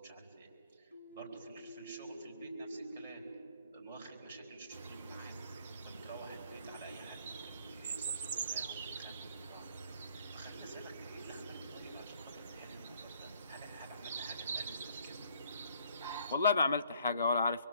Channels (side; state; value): both; inverted; correlation -0.63